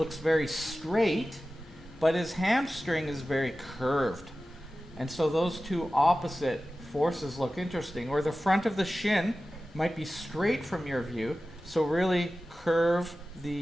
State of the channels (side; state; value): both; normal; correlation 0.95